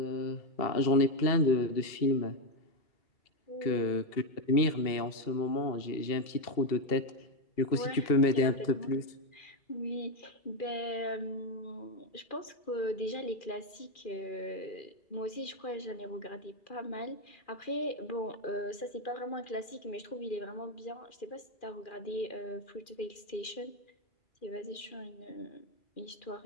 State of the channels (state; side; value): late; right; 2.4 ms